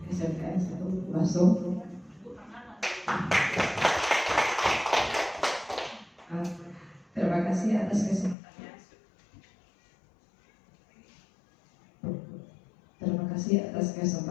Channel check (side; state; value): right; drops out; at 8.3 s